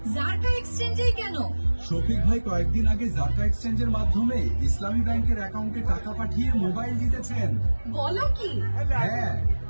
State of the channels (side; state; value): both; inverted; correlation -1.00